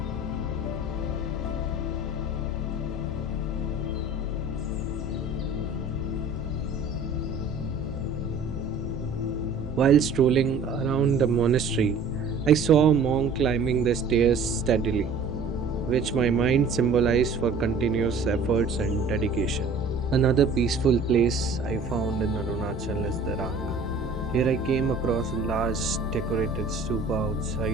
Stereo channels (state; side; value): quieter; left; 3.7 dB